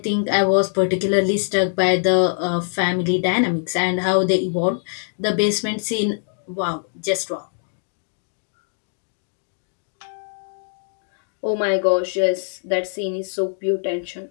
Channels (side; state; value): right; silent; digital silence